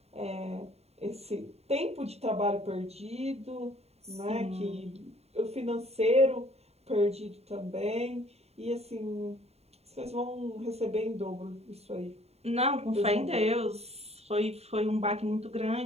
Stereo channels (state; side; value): late; left; 0.30 ms